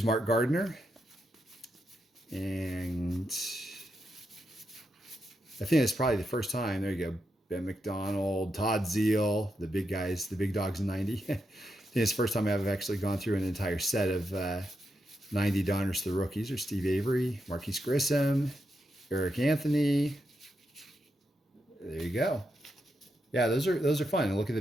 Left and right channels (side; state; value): both; normal; correlation 0.84